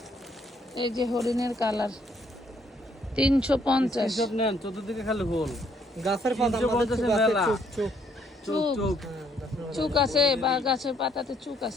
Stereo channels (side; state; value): both; normal; correlation 0.68